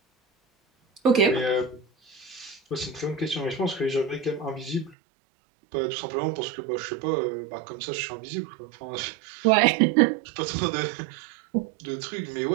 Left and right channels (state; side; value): drops out; left; at 5.0 s